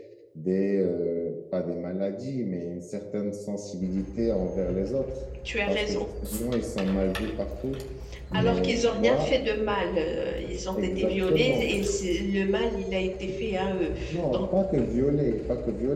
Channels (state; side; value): identical; both; correlation 1.00